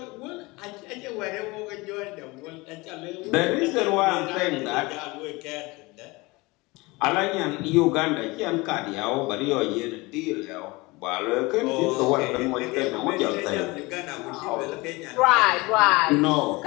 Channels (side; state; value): right; quieter; 23.5 dB